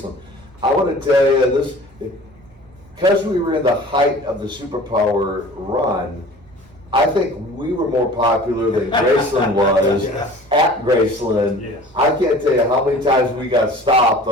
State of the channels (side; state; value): both; normal; correlation 0.45